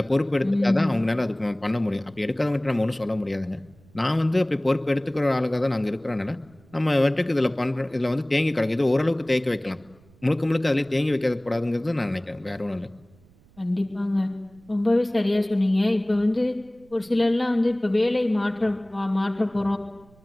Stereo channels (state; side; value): noise; right; rumble, 28 dB below the sound